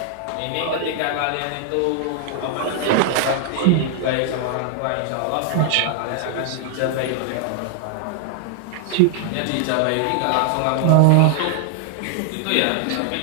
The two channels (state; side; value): different; both; correlation 0.00